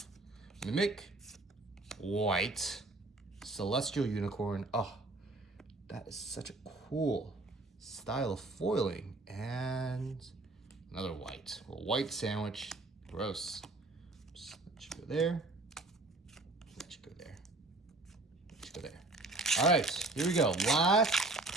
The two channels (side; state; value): left; quieter; 3.1 dB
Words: Mimic, white, Celestial Unicorn. Oh, that is such a cool style of foiling. And another white. A white sandwich. Gross. Just let you go there. Let you go there. Let you go there. All right, here we go. Last